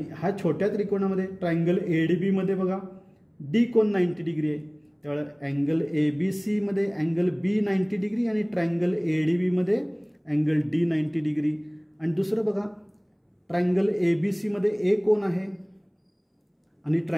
हा छोट्या त्रिकोणामध्ये ट्रायंगल ADB मध्ये बघा D कोन 90 डिग्री आहे. त्यामुळे अँगल ABC मध्ये अँगल B 90 डिग्री आणि ट्रायंगल ADB मध्ये अँगल D 90 डिग्री. आणि दुसरं बघा ट्रायंगल ABC मध्ये A कोन आहे आणि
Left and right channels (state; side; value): identical; both; correlation 1.00